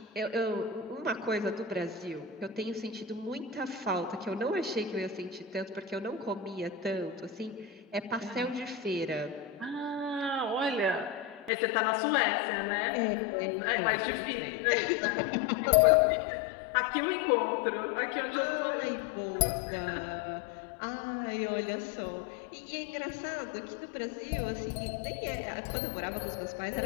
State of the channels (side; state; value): right; drops out; at 11.5 s